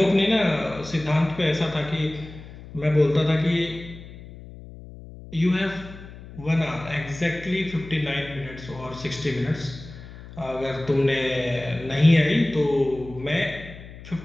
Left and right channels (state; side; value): noise; left; hum, 16 dB below the sound